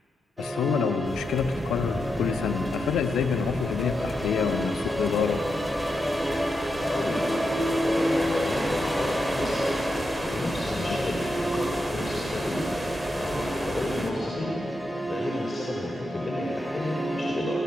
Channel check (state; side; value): normal; both; correlation 0.86